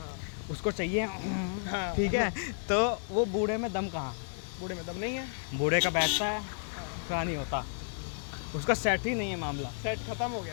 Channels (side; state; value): right; silent; 56 dB below the other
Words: उसको चाहिए हाँ। ठीक है, तो वो बूढ़े में दम कहाँ? बूढ़े में दम नहीं है। बूढ़े का बैठता है, थोड़ा नहीं होता, उसका सेट ही नहीं है मामला। सेट खत्म हो